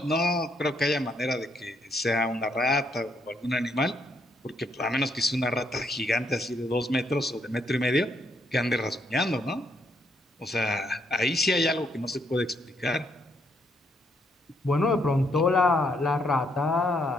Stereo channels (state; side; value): normal; both; correlation 0.74